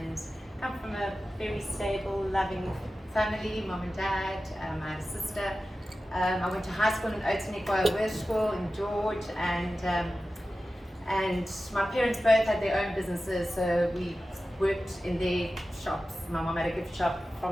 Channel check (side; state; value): both; normal; correlation 0.94